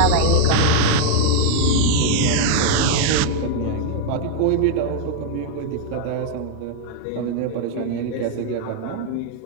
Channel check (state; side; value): different; both; correlation 0.00